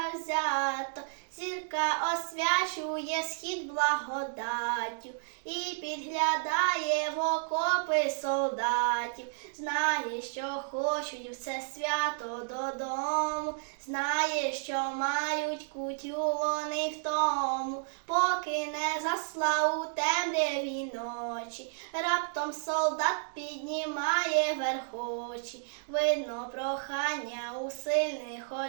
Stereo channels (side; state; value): left; silent; digital silence